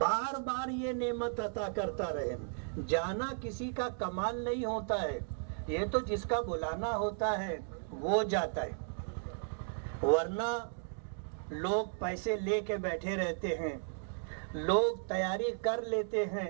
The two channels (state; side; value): silent; left; digital silence